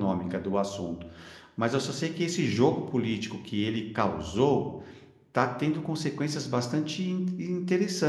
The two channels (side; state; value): both; identical; correlation 1.00